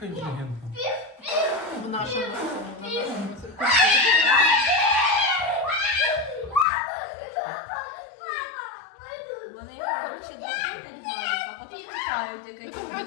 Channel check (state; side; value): drops out; right; at 6.7 s